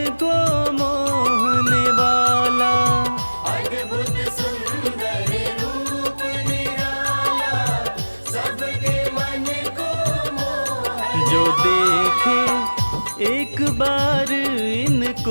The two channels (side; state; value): both; inverted; correlation -1.00